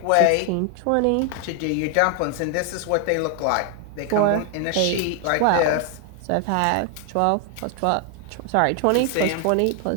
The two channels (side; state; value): both; different; correlation 0.00